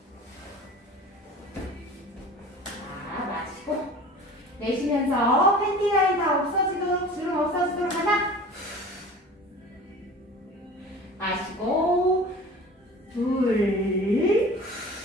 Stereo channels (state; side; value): normal; both; correlation 0.40